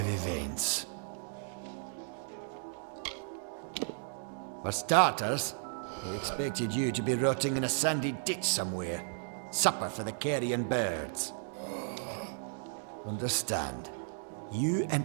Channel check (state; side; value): silent; left; digital silence